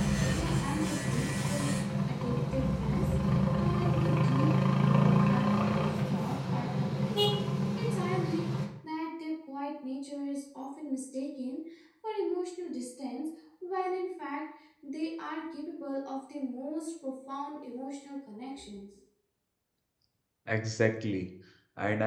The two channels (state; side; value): identical; both; correlation 1.00